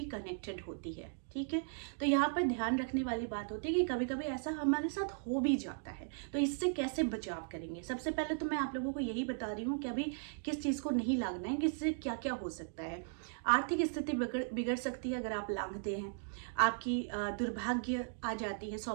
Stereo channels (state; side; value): silent; left; digital silence